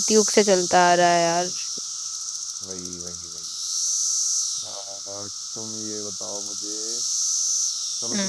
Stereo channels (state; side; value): identical; both; correlation 1.00